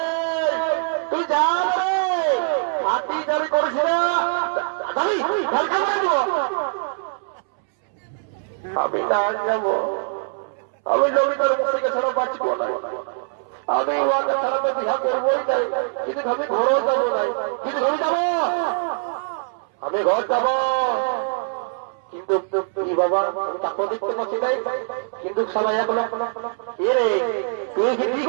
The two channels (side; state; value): left; silent; 63 dB below the other